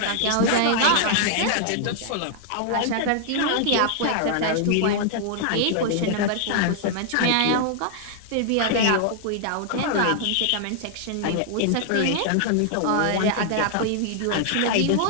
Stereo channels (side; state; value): both; different; correlation 0.00